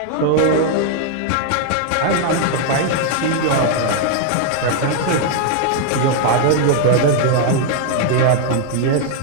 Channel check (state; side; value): different; both; correlation 0.00